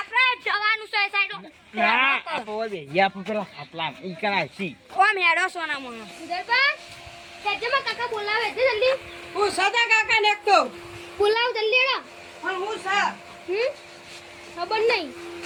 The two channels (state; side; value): identical; both; correlation 1.00